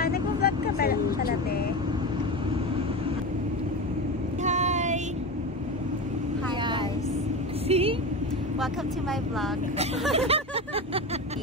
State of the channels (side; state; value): both; normal; correlation 0.23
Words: Nag-vlog ka ba pala, te? Hi! Hi, guys. See? Welcome to my vlog.